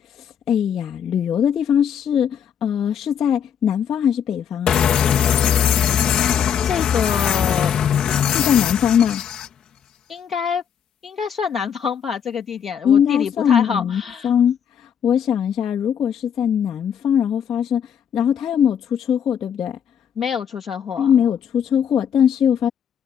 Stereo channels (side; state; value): right; quieter; 8.3 dB